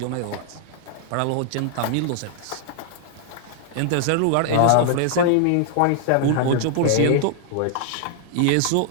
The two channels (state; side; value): different; both; correlation -0.01